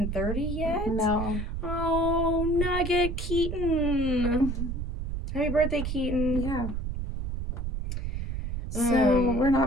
30 yet? No. Oh, Nugget Keaton. Happy birthday, Keaton. Yeah. So we're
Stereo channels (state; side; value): noise; right; rumble, 3 dB below the sound